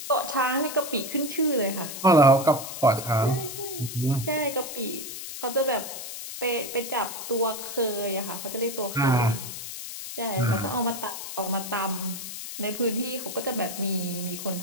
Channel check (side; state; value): left; noise; hiss, 8 dB below the sound